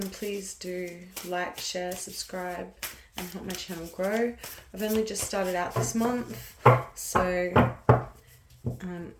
please do like, share, subscribe and help my channel grow. I've only just started out this month, so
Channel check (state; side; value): identical; both; correlation 1.00